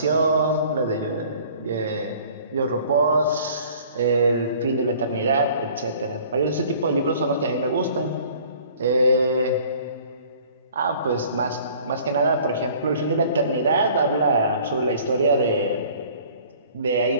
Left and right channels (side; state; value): both; inverted; correlation -0.52